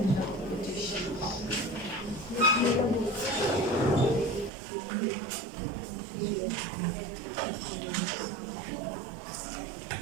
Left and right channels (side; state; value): left; drops out; at 4.5 s